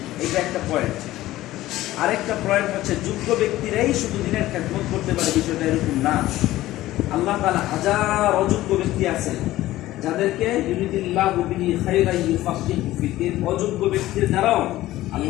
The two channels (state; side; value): quieter; right; 15.9 dB